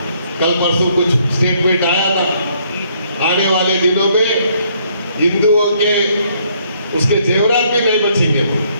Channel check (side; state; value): both; inverted; correlation -0.68